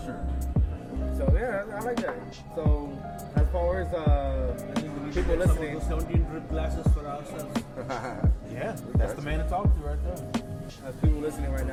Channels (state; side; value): identical; both; correlation 1.00